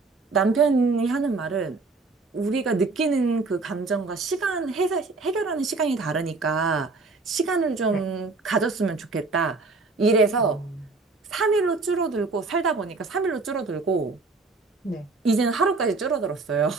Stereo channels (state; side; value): quieter; left; 3.8 dB